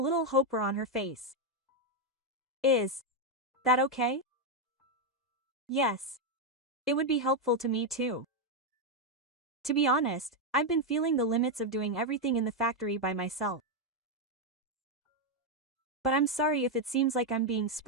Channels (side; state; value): both; normal; correlation 0.03